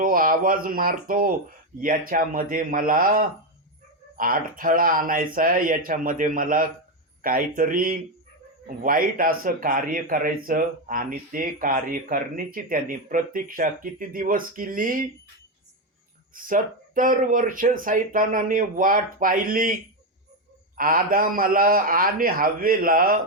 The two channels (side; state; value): both; normal; correlation 0.08